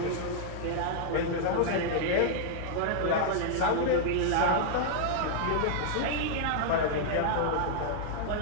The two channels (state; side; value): different; both; correlation -0.01